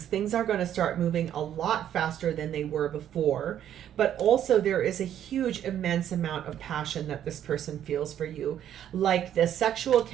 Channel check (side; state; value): left; quieter; 10.5 dB